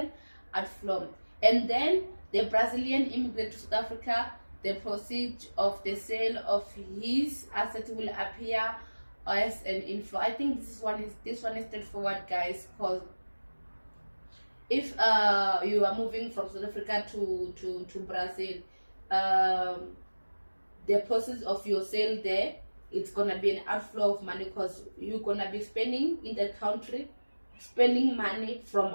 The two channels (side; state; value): both; inverted; correlation -1.00